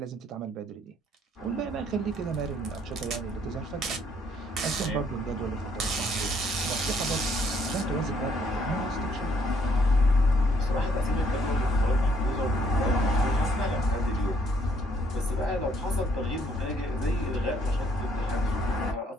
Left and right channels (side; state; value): both; normal; correlation 0.67